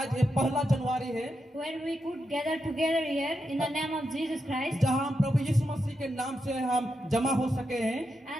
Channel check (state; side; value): normal; both; correlation 0.85